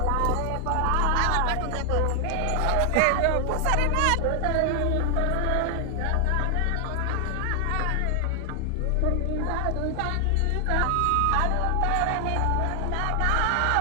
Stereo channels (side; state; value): both; different; correlation 0.00